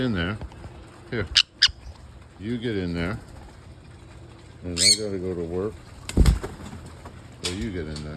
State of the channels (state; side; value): identical; both; correlation 1.00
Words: there. Here. You get in there. And I gotta go to work. So you get in